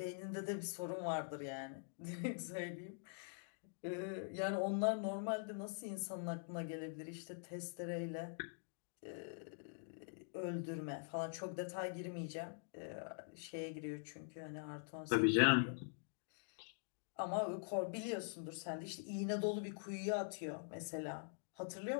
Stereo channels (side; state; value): right; silent; digital silence